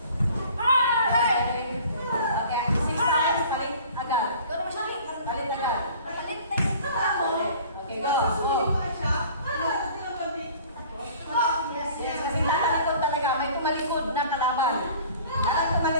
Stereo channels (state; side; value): inverted; both; correlation -0.48